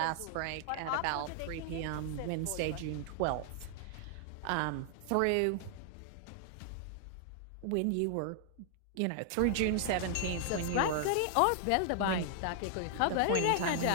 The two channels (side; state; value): both; different; correlation 0.00